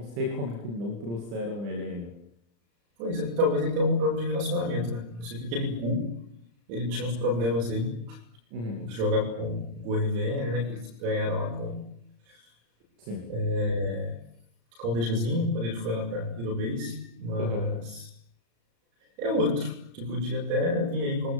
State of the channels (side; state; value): left; late; 35 ms